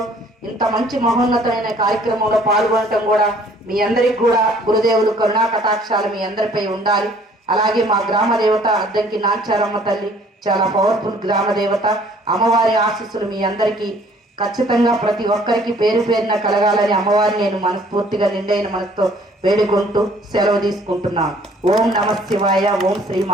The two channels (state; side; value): normal; both; correlation 0.58